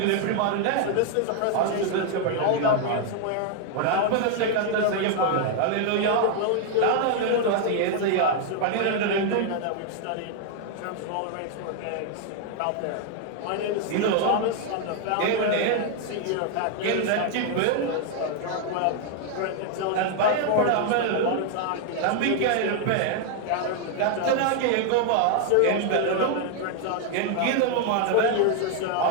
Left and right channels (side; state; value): both; different; correlation 0.00